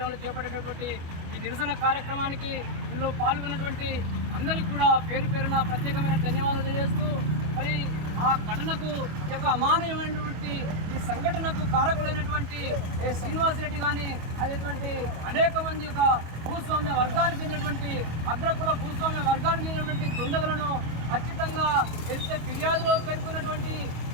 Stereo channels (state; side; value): late; left; 25 ms